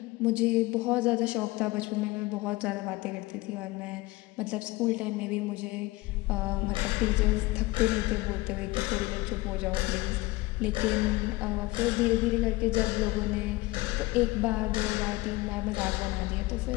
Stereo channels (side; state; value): right; quieter; 20.8 dB